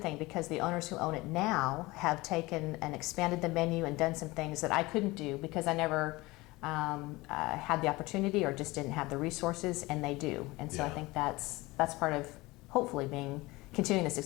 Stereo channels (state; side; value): quieter; right; 21.4 dB